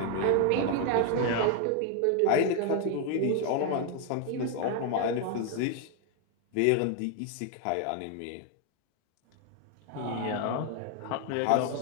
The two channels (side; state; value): both; different; correlation 0.00